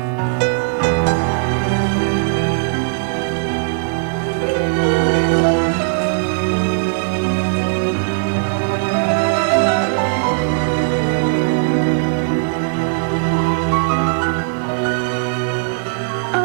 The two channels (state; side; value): silent; left; digital silence